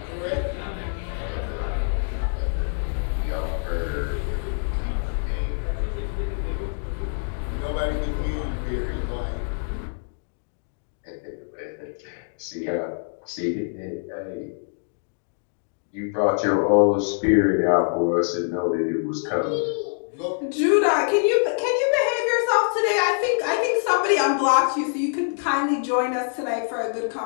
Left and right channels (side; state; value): right; silent; 62 dB below the other